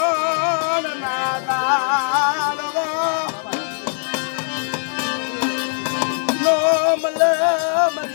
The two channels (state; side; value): silent; right; digital silence